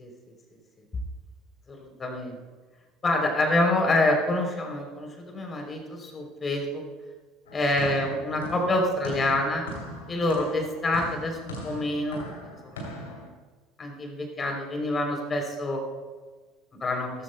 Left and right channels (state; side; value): normal; both; correlation 0.64